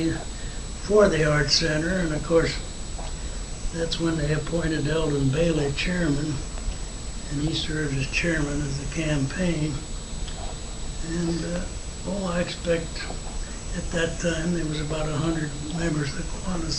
for the art center, and of course that's when they appointed Eldon Bailey chairman, and he served as chairman of the campaign. And I expect at that time there was about 100 members of the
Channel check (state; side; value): identical; both; correlation 1.00